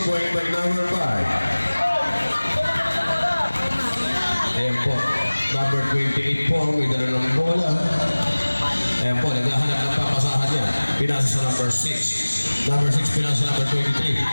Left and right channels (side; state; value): both; inverted; correlation -1.00